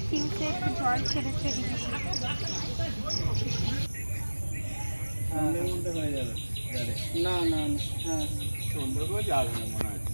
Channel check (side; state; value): both; inverted; correlation -1.00